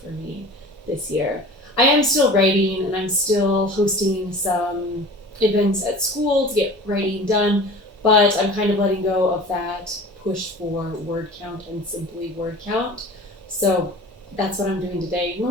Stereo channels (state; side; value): normal; both; correlation 0.40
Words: for me this year. I am still writing and I'm still hosting some events at school to get writing done, but I'm kind of letting go of that push for word count and simply word count. So that's what I'm doing today.